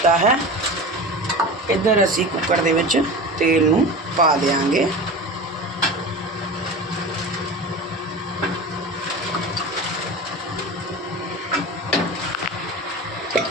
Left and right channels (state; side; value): normal; both; correlation 0.31